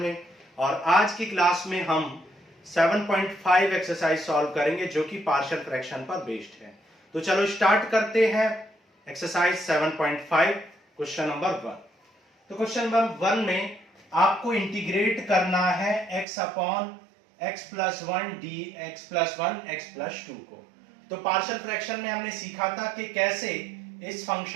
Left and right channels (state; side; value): drops out; left; at 16.2 s